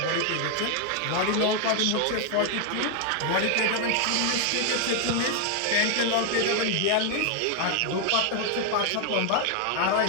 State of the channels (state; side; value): different; both; correlation 0.00